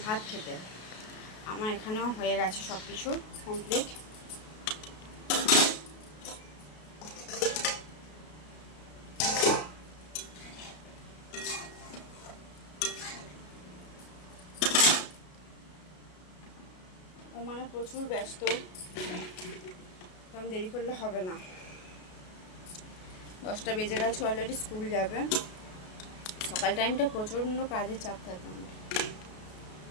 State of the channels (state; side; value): late; right; 33 ms